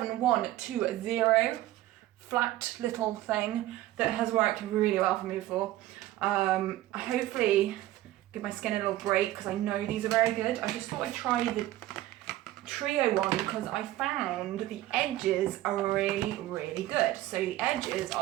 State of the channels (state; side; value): quieter; left; 15.3 dB